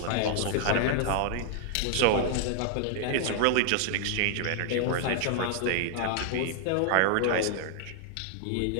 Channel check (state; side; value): different; both; correlation -0.01